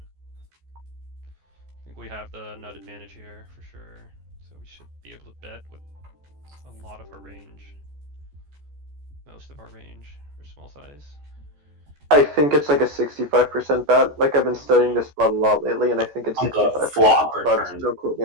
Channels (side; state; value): left; late; 14 ms